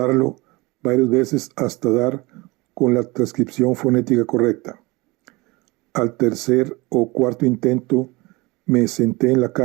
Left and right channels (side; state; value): left; quieter; 23.6 dB